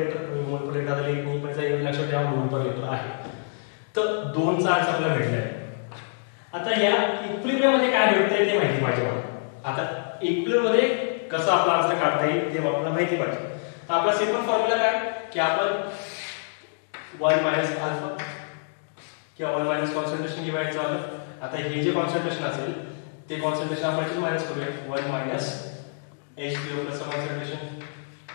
आता एक नाही पण एक लक्षात ठेवा मोल पर लिटर आहे. तर 2 चा आन्सर आपल्याला भेटलाय. आता या इक्विलिब्रियम मध्ये काय भेटतंय ते माहिती पाहिजे मला. आता इक्विलिब्रियम मध्ये कसं आपला आन्सर काढता येईल ते आपल्याला माहिती पाहिजे. तर आपला सिंपल फॉर्म्युला काय की आपण 1 मायनस अल्फा किंवा 1 मायनस कॉन्सन्ट्रेशन घेवायचं आहे. आता हे जे कॉन्सन्ट्रेशन असेल ते कॉन्सन्ट्रेशन आपण इथे मायनस करूया. 1 minus H3O plus concentration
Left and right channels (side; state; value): right; silent; digital silence